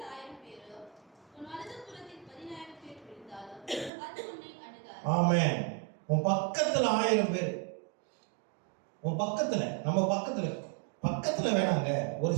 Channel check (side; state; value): left; drops out; at 3.9 s